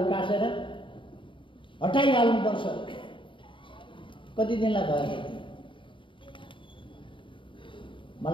उकासेर हटाइहाल्नुपर्छ। कति दिनलाई भयो?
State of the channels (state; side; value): late; right; 0.24 ms